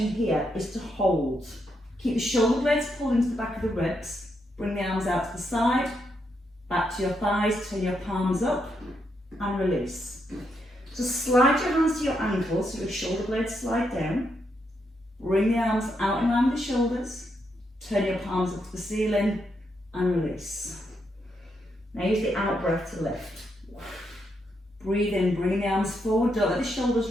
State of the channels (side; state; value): both; normal; correlation 0.80